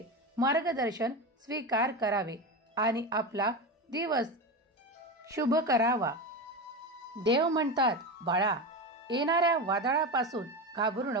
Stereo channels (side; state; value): both; normal; correlation 0.20